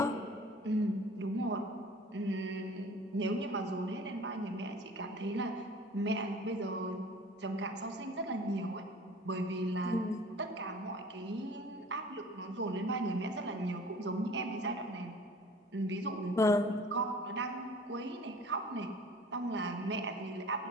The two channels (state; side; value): normal; both; correlation 0.46